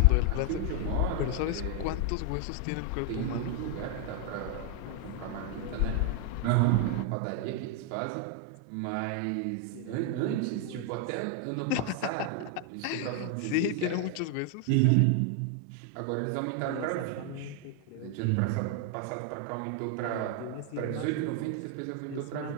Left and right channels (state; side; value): different; both; correlation 0.01